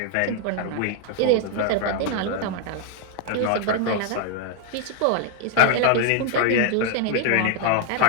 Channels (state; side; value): different; both; correlation 0.00